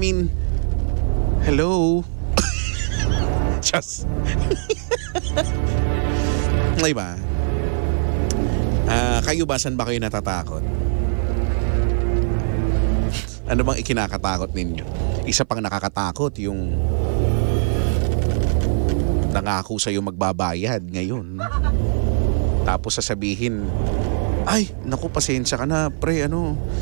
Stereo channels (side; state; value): left; silent; 58 dB below the other